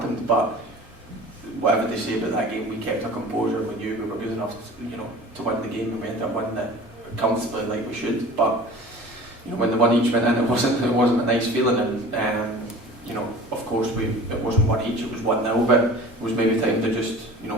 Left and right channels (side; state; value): both; normal; correlation 0.41